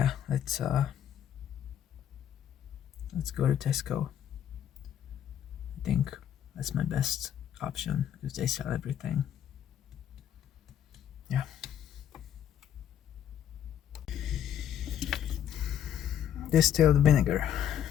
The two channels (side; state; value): right; quieter; 10.0 dB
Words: let's go to Tesco. I think that's my best option because they sell everything. Yeah. Distilled vinegar.